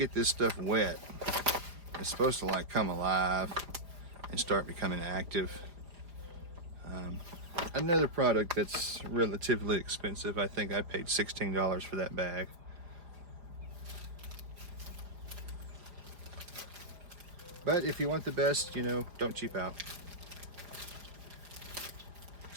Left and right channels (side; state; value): left; late; 4.9 ms